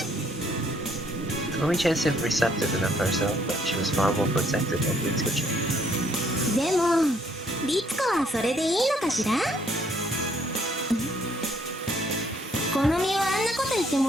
ん。Komi-chan seemed receptive enough herself, but she was far more protective of Ritsuko-chan. でも律子はそれでいいのかしら？この実はあんなこと言って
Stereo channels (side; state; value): both; normal; correlation 0.66